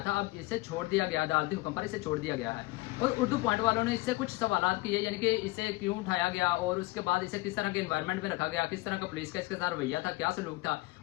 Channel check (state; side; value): quieter; right; 21.3 dB